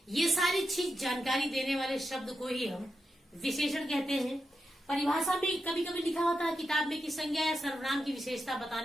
ये सारी चीज जानकारी देने वाले शब्द को ही हम विशेषण कहते हैं। परिभाषा में कभी कभी लिखा होता है किताब में कि संज्ञा या सर्वनाम की विशेषता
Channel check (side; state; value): both; normal; correlation 0.87